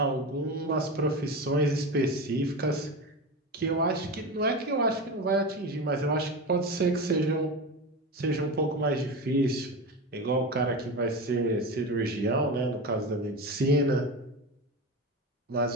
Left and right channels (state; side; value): normal; both; correlation 0.23